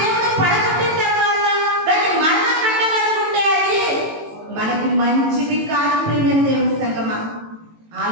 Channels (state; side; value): late; left; 18 ms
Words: పడగొట్టిన తర్వాత దాన్ని మరలా కట్టాలనుకుంటే అది మనకి మంచిది కాదు. ప్రియమైన దేవుని సంగమా,